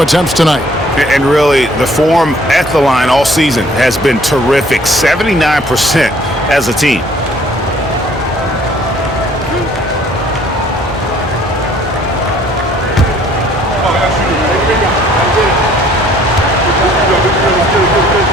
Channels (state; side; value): normal; both; correlation 0.58